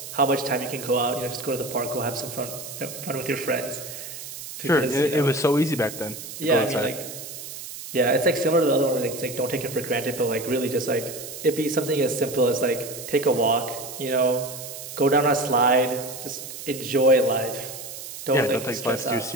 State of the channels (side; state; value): right; noise; hiss, 11 dB below the sound